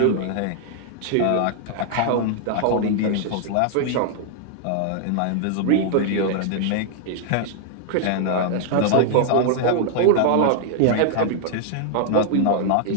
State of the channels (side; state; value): both; different; correlation 0.00